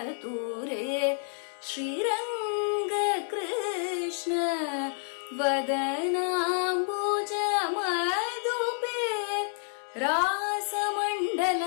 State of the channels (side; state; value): right; silent; 58 dB below the other